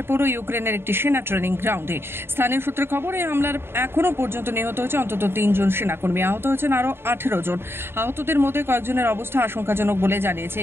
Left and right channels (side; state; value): left; late; 0.11 ms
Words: পড়ল ইউক্রেনের একটি সেনা ট্রেনিং গ্রাউন্ডে। স্থানীয় সূত্রে খবর, এই হামলার এখনো পর্যন্ত নিহত হয়েছে অন্তত 3 জন সেনাকর্মী, আহত হয়েছেন আরও 18 জন। আহতদের মধ্যে কয়েকজনের অবস্থা আশঙ্কাজনক বলে জানিয়েছে